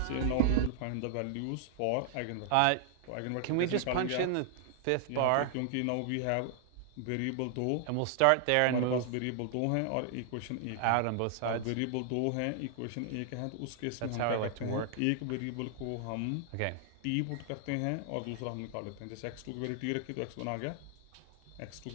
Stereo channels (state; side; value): different; both; correlation 0.00